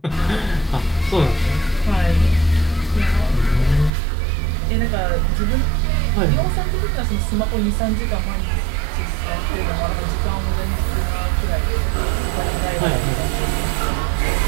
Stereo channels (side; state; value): left; drops out; at 3.9 s